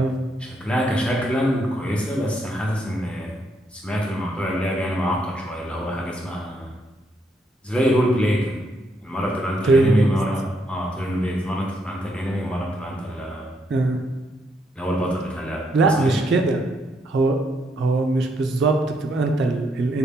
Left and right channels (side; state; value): both; normal; correlation 0.75